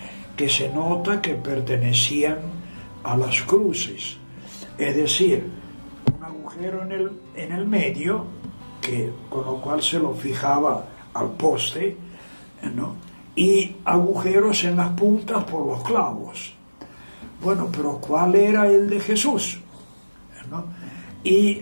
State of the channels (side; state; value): both; inverted; correlation -1.00